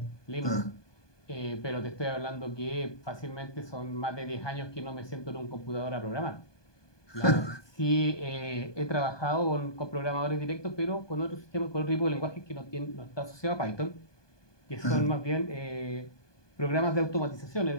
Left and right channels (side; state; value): right; late; 1.2 ms